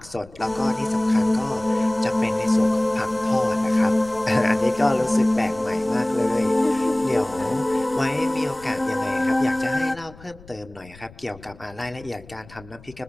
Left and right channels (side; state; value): left; noise; rumble, 21 dB below the sound